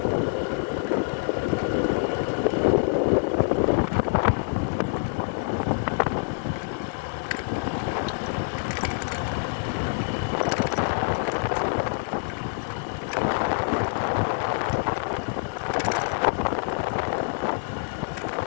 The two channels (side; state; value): right; silent; digital silence